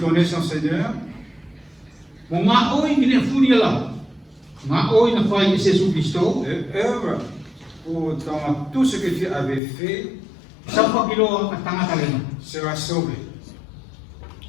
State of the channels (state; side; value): drops out; right; at 9.6 s